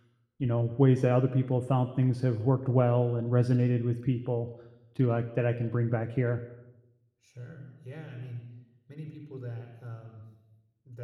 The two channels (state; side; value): identical; both; correlation 1.00